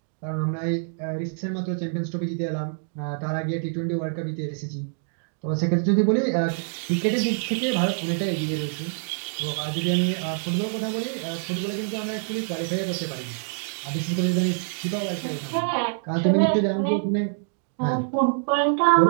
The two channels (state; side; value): silent; left; digital silence